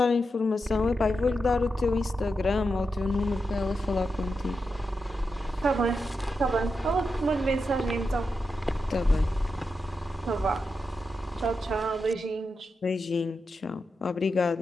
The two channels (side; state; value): both; normal; correlation 0.87